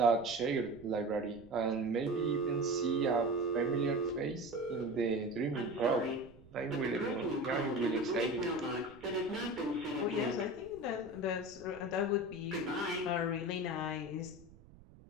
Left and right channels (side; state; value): right; noise; rumble, 22 dB below the sound